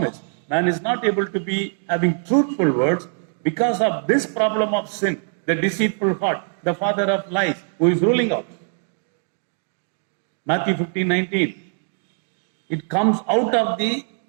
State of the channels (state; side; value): silent; left; digital silence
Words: Man is not able to be having truthful words because of this problem of sin, the deceitful heart, the father of lies, who is ruling out. Matthew 15:19. It comes out of the